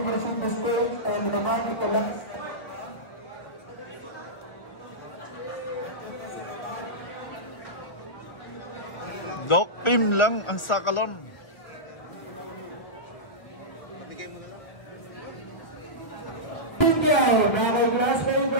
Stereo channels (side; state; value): right; late; 1.3 ms